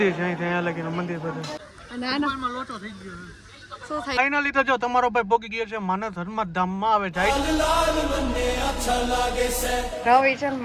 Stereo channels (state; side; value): identical; both; correlation 1.00